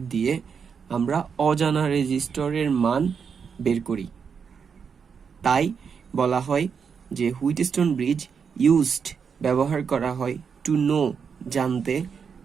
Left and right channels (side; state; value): left; quieter; 6.4 dB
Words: দিয়ে আমরা অজানা রেজিস্টরের মান বের করি। তাই বলা হয় যে হুইটস্টোন ব্রিজ ইউজড ব্যবহার করা হয় টু নো জানতে